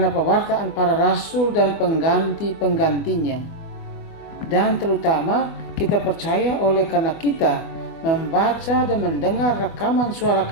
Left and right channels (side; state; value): right; late; 25 ms